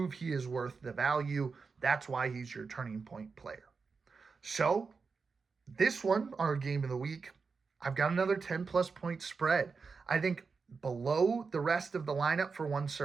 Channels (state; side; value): quieter; left; 4.9 dB